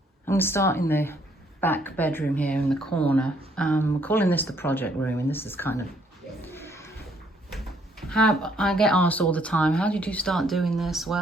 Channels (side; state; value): both; normal; correlation 0.67